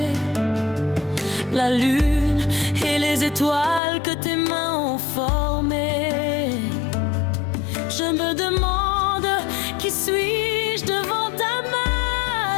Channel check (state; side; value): drops out; right; at 3.8 s